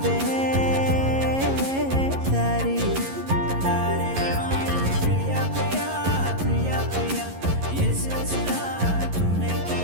దారి దారే ప్రియా ప్రియా ప్రియా ప్రియా ये सिलसिला तूने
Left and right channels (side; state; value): left; late; 11 ms